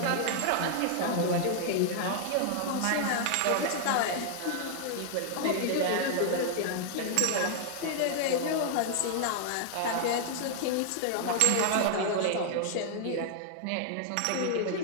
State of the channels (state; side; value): different; both; correlation -0.01